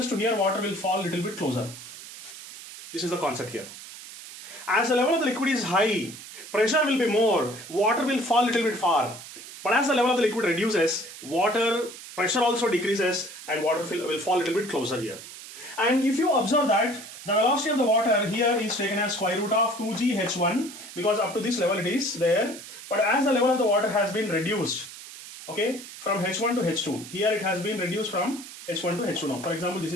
to here, water will fall a little bit closer. This is the concept here. As the level of the liquid is high, pressure will be more, water will fall a little bit far. But as the level of the liquid reduces, water pressure also decreases and water will fall a little bit closer here. And if you observe that the velocity of the water here is taken as square root of 2g h1 because up to this level it is there. But as the level of the water has been reduced, okay, from h1 to h2, here it has been reduced from h1 to h2 now. For example, this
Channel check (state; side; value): noise; right; hiss, 14 dB below the sound